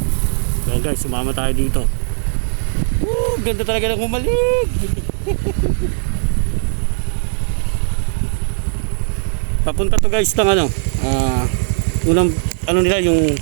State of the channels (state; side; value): silent; left; digital silence